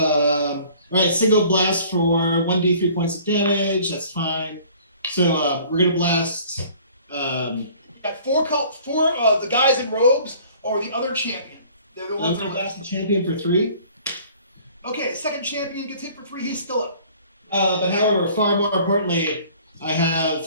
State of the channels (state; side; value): inverted; both; correlation -0.52